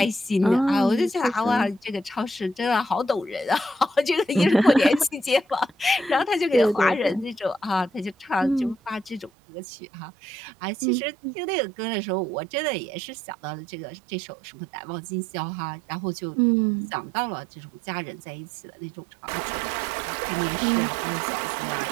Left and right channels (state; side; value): drops out; left; at 9.3 s